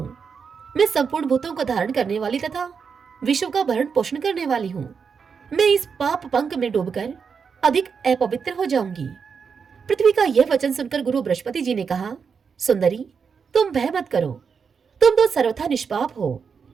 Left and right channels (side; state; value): left; quieter; 6.0 dB